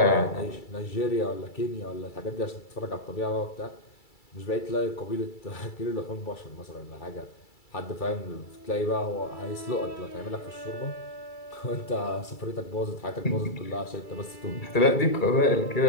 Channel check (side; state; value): right; late; 2.3 ms